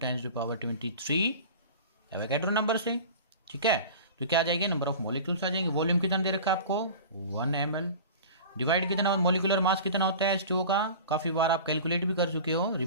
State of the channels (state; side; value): inverted; both; correlation -0.37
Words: एवोगैड्रो नंबर से। ठीक है, तो क्या आ जाएगी, नंबर ऑफ मॉलिक्यूल्स आ जाएंगे। वॉल्यूम कितना दे रखा है आपको, 1 ml। डिवाइड कितना, मॉलिक्यूलर मास कितना होता है H2O का, काफी बार आप कैलकुलेट भी कर चुके हो,